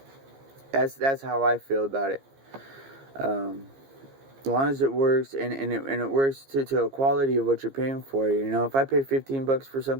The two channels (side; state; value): left; late; 15 ms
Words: That's how I feel about it. As long as it works and it works to a quality of what you're paying for. If I pay $15 for